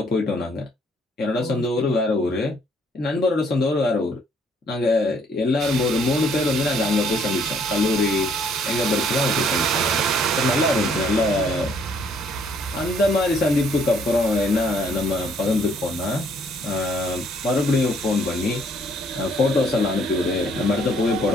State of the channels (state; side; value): normal; both; correlation 0.64